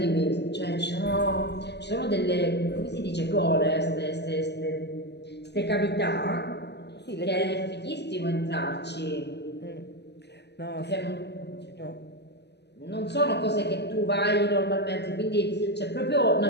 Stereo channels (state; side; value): late; right; 0.50 ms